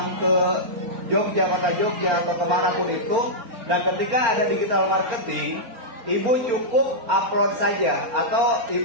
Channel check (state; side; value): late; left; 4.3 ms